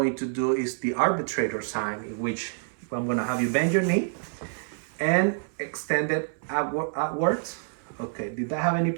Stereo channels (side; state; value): left; silent; 60 dB below the other